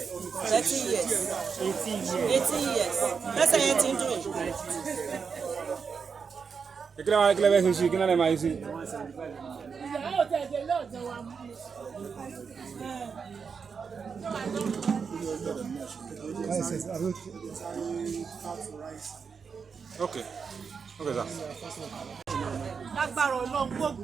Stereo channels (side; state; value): left; quieter; 5.9 dB